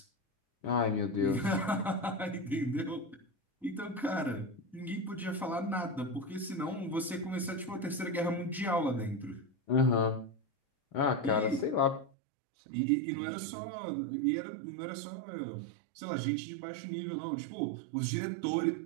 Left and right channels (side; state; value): left; drops out; at 12.1 s